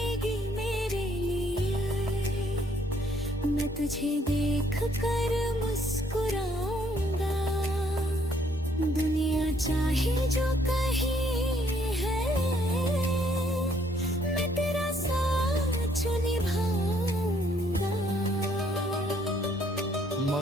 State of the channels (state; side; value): normal; both; correlation 0.67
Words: मेरे लिए, मैं तुझे देख कर मुस्कुराऊंगा। दुनिया चाहे जो कहे है, मैं तेरा साथ निभाऊंगा।